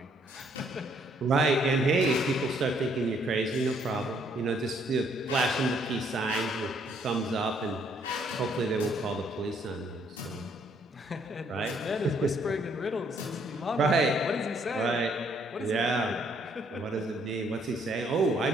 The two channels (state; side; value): normal; both; correlation 0.67